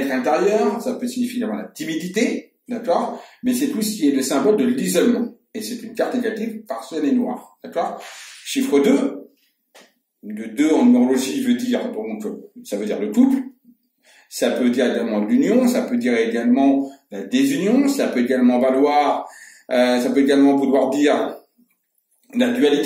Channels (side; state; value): both; identical; correlation 1.00